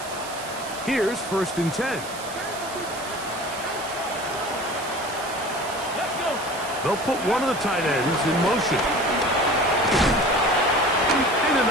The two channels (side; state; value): right; noise; hiss, 13 dB below the sound